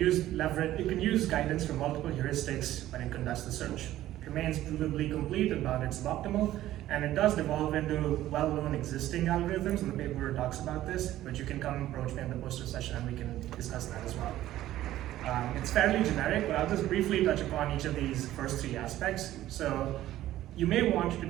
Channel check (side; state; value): left; quieter; 14.1 dB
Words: guidance from multiple heuristics when it conducts the search. It remains provably complete about its suboptimal, and it does devolve into well-known existing algorithms, and the paper talks about this, but you can come approach me in the poster session and we can discuss that as well. It's fairly generic, but I'll just briefly touch upon each of these first three aspects. So you may want to